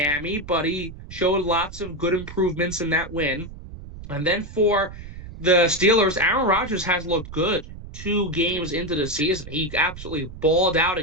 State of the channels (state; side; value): noise; right; rumble, 13 dB below the sound